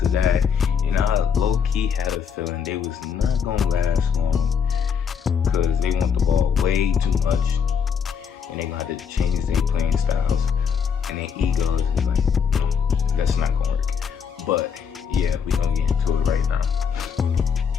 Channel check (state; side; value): quieter; right; 6.8 dB